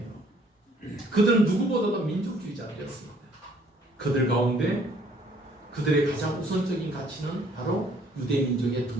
그들은 누구보다도 민족주의자들이었습니다. 그들 가운데 그들의 가장 우선적인 가치는 바로 유대민족의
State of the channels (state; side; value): normal; both; correlation 0.61